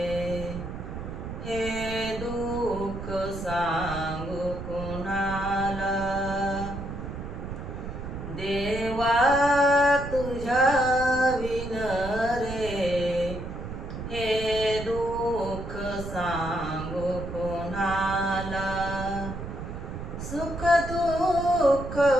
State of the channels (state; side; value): noise; right; rumble, 8 dB below the sound